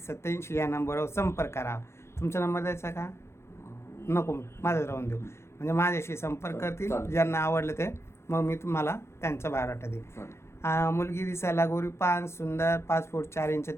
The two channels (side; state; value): right; late; 0.13 ms